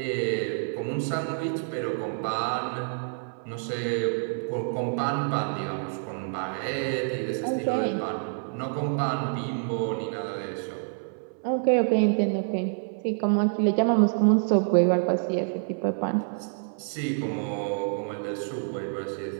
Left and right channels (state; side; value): silent; left; 57 dB below the other